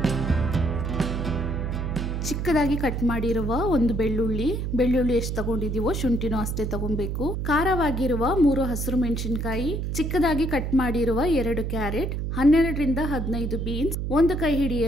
ಚಿಕ್ಕದಾಗಿ ಕಟ್ ಮಾಡಿರುವ ಒಂದು ಬೆಳ್ಳುಳ್ಳಿ ಎಷ್ಟು ತಗೊಂಡಿದೀವೋ ಶುಂಠಿನೂ ಅಷ್ಟೇ ತಗೊಬೇಕು. ಖಾರವಾಗಿರುವ 3 ಹಸಿರು ಮೆಣಸಿನಕಾಯಿ, ಚಿಕ್ಕದಾಗಿ ಕಟ್ ಮಾಡಿರುವ 2 ಕ್ಯಾರೆಟ್, 12 ರಿಂದ 15 ಬೀನ್ಸ್, 1 ಕೈ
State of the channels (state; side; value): noise; right; hum, 2 dB below the sound